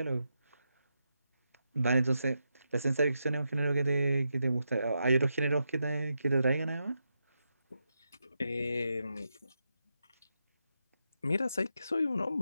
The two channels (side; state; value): both; inverted; correlation -0.86